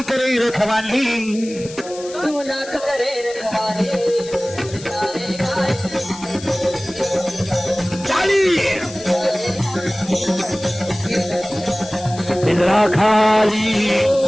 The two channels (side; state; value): left; noise; hiss, 16 dB below the sound